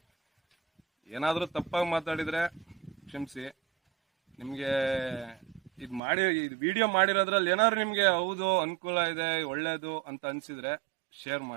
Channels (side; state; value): left; drops out; at 6.0 s